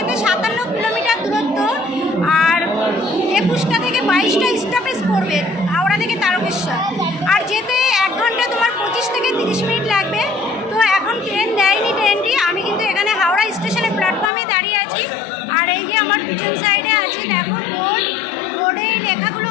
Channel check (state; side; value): drops out; right; at 14.3 s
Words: 57 কিলোমিটার দূরত্ব, আর 21টা থেকে 22টা স্টপেজ পড়বে হাওড়া থেকে তারকেশ্বর। আর যেতে 1 ঘন্টা তোমার 25 থেকে 30 মিনিট লাগবে। তো এখন ট্রেন দেয়নি, ট্রেনটি আমি কিন্তু এখানে হাওড়া স্টেশনে প্ল্যাটফর্মে দাঁড়িয়ে আছি। আর এই যে আমার পিছন সাইডে আছে দেখো বোর্ডে এই লেখাগুলো